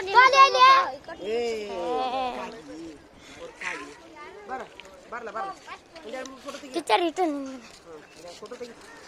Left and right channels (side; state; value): both; identical; correlation 1.00